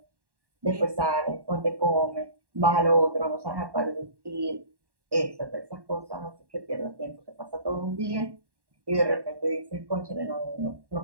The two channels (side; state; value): left; late; 1.1 ms